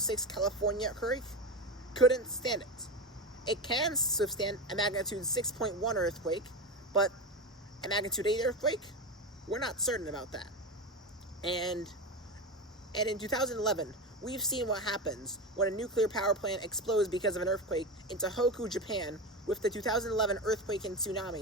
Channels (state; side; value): normal; both; correlation 0.20